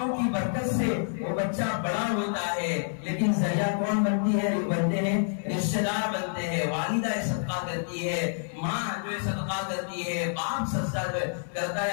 کی برکت سے وہ بچہ بڑا ہوتا ہے. لیکن ذریعہ کون بنتی ہے بنتے ہیں رشتے دار بنتے ہیں. والدہ صدقہ کرتی ہے ماں جو ہے صدقہ کرتی ہے باپ سجدہ کرتا ہے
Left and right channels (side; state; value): right; silent; 59 dB below the other